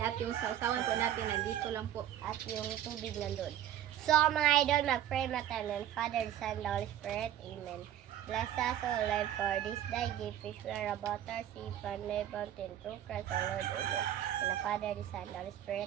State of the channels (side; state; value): left; quieter; 11.3 dB